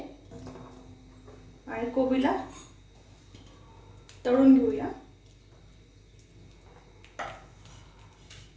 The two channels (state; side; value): identical; both; correlation 1.00